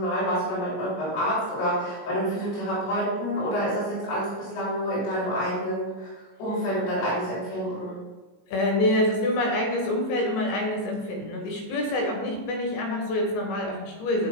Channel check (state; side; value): late; right; 19 ms